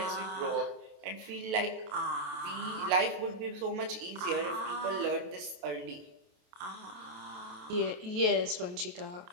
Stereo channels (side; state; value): left; late; 28 ms